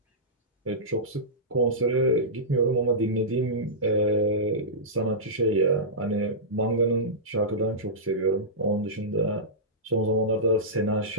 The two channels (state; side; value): normal; both; correlation -0.15